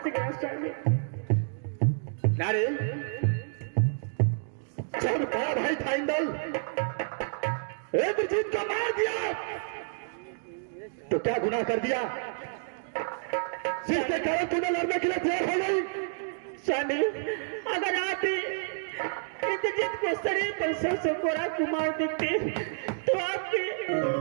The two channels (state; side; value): silent; left; digital silence